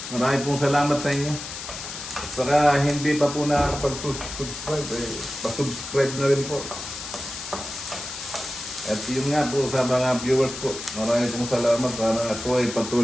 marami pong salamat sa inyo. At saka hindi pa po nakakapag-subscribe, pa-subscribe na rin po. At yun nga po sa mga viewers po, marami pong salamat para ako ay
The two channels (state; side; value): noise; left; hiss, 9 dB below the sound